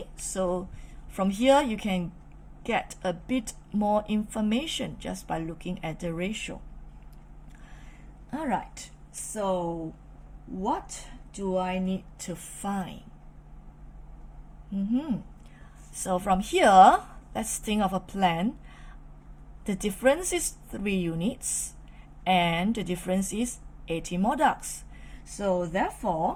so from here you can get a bit more information just by looking at the ratio. All right, so what do I need to find? So from here, let's think of a plan. The difference is 3 units and the difference is 18 more ducks. So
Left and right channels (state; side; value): identical; both; correlation 1.00